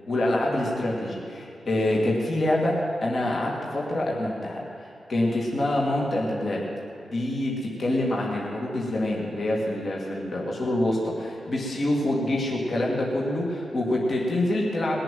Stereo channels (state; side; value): normal; both; correlation 0.89